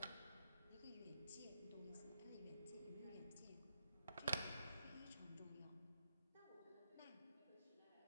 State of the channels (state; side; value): inverted; both; correlation -0.79